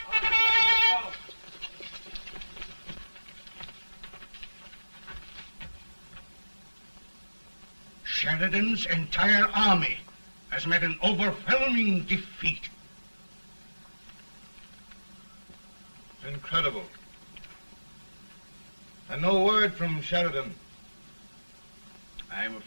Sheridan's entire army has met an overwhelming defeat. Incredible. And no word from Sheridan. I'm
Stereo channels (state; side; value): inverted; both; correlation -1.00